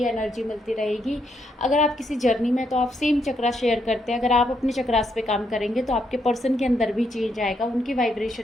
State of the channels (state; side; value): normal; both; correlation 0.77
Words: एनर्जी मिलती रहेगी। अगर आप किसी जर्नी में तो आप सेम चक्रा शेयर करते हैं, अगर आप अपने चक्रास पे काम करेंगे तो आपके पर्सन के अंदर भी चेंज आएगा, उनकी